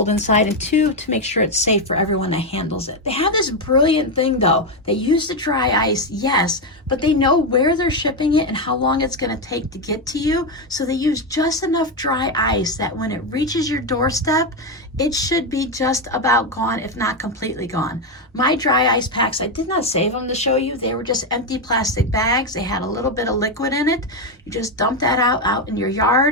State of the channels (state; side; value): normal; both; correlation 0.07